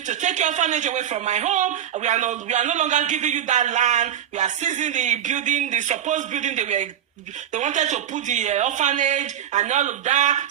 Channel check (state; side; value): quieter; left; 10.2 dB